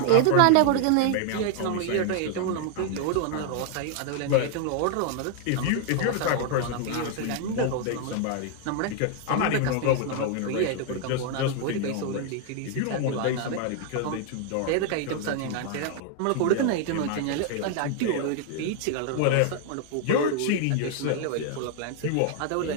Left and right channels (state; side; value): different; both; correlation 0.00